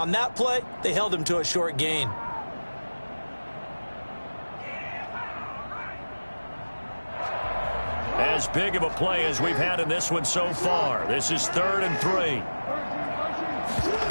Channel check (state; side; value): inverted; both; correlation -1.00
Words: that play, they held him to a short gain. As big of a play as we've had in this one so far. This is 3rd and 3.